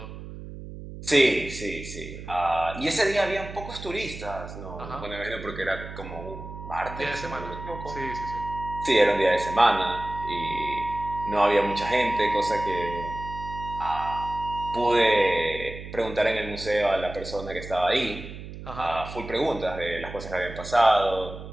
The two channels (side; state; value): right; noise; hum, 12 dB below the sound